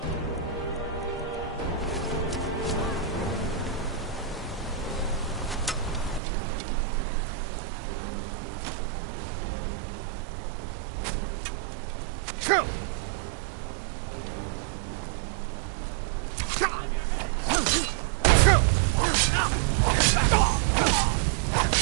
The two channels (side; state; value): left; drops out; at 6.2 s